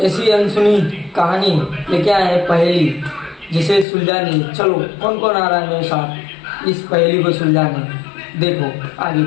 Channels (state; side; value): drops out; right; at 3.9 s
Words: ऐसी अनसुनी कहानी लेके आए हैं, पहेली जिसे सुलझानी। चलो कौन कौन आ रहा है मेरे साथ इस पहेली को सुलझाने। देखो आगे